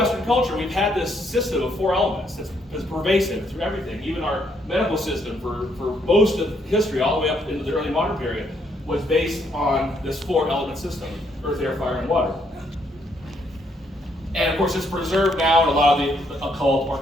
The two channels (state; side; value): normal; both; correlation 0.72